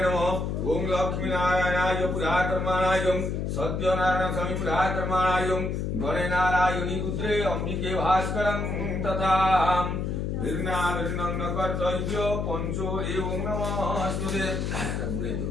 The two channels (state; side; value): noise; left; hum, 1 dB below the sound